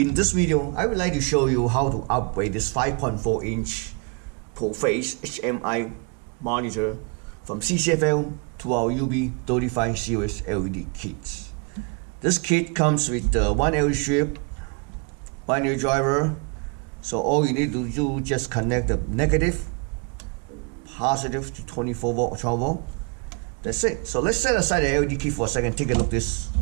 this video, I would like to show you how to upgrade this 5.4-inch full-face HMI monitor from CCFL to our UB35 series LED kits. This kit comes with one LED strip, one LED driver, so all you need to do is just connect the negative, positive to 24 volt or 12 volt. That's it. So let's set aside the LED kit for a second. Take a look at this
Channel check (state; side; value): quieter; left; 33.3 dB